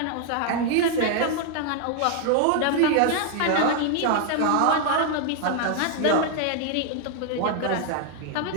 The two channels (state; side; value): different; both; correlation 0.00